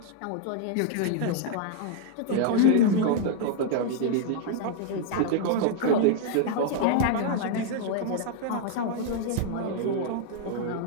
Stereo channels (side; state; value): both; different; correlation 0.00